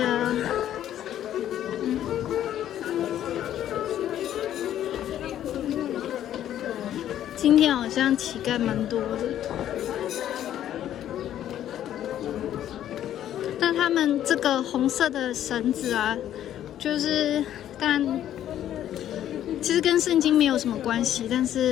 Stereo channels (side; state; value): right; quieter; 11.4 dB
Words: 今天好像乞丐蛮多的，但他们这个红色的绳子啊，就是当然其实跟圣经没有什么关系，但